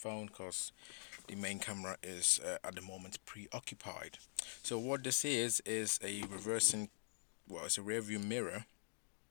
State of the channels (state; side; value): silent; right; digital silence